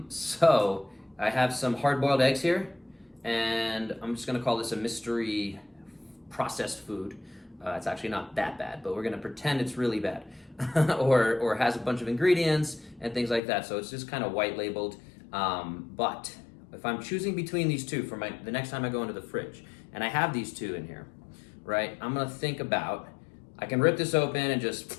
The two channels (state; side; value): drops out; right; at 13.4 s